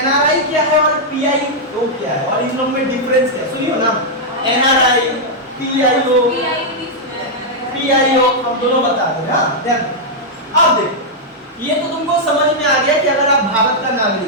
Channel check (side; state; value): both; normal; correlation -0.05